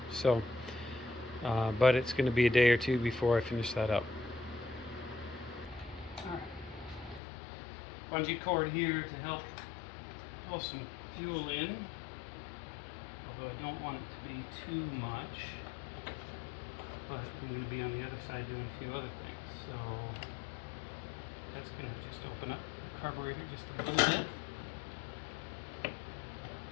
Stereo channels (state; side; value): drops out; right; at 7.2 s